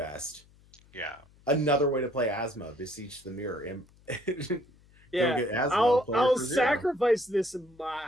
Yeah. Another way to play Asmo, Beseech the Mirror. Yeah, I'll sacrifice this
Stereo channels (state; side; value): noise; left; hum, 28 dB below the sound